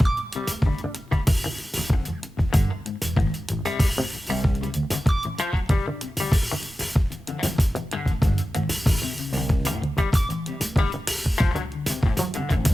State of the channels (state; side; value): normal; both; correlation 0.94